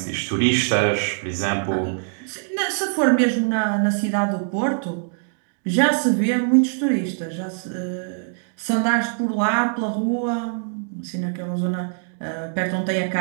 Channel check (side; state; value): left; silent; digital silence